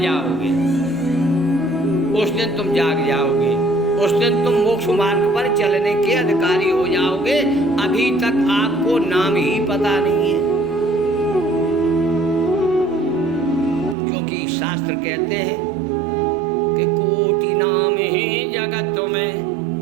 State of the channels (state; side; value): drops out; left; at 14.0 s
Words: जाओगे उस दिन तुम जाग जाओगे, उस दिन तुम मोक्ष मार्ग पर चलने के अधिकारी हो जाओगे। अभी तक आपको नाम ही पता नहीं है, क्योंकि शास्त्र कहते हैं कि कोटि नाम ही जगत में,